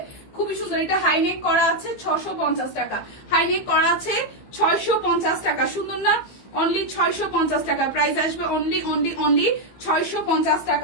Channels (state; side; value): late; right; 15 ms